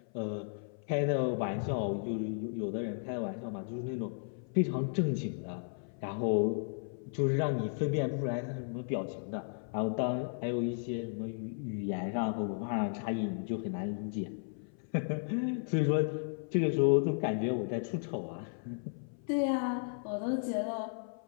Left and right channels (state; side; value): silent; right; 55 dB below the other